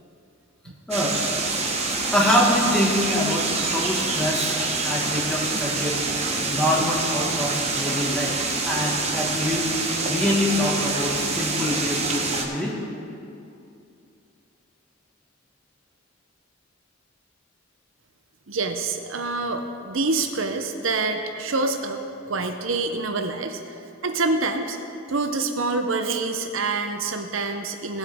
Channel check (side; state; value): both; normal; correlation 0.23